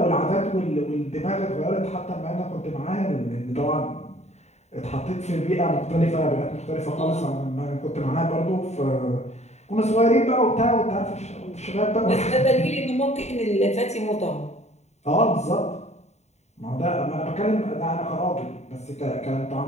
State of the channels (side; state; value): right; late; 0.32 ms